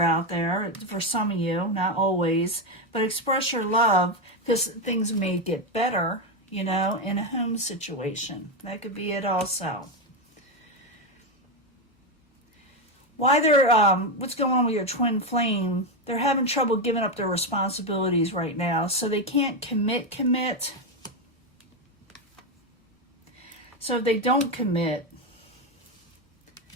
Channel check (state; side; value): normal; both; correlation 0.08